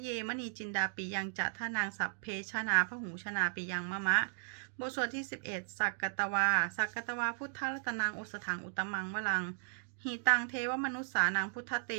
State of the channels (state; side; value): silent; left; digital silence